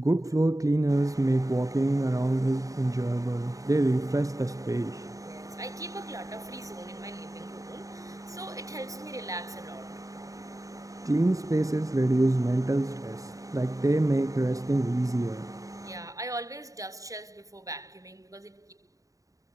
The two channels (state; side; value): late; left; 0.16 ms